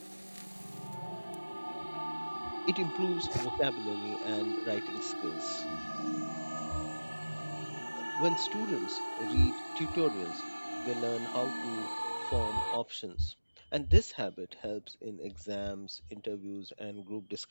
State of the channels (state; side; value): inverted; both; correlation -1.00